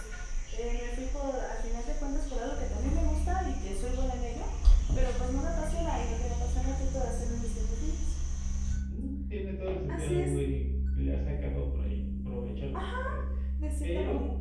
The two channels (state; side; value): identical; both; correlation 1.00